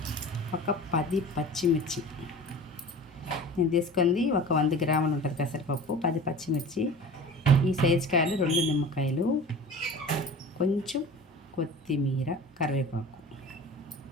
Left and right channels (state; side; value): normal; both; correlation 0.39